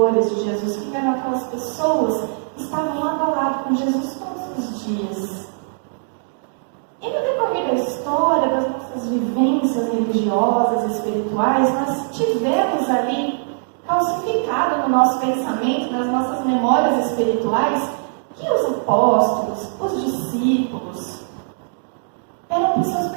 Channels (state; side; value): silent; left; digital silence